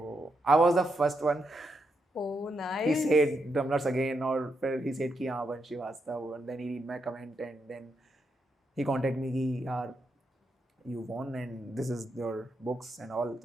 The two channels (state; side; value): normal; both; correlation 0.82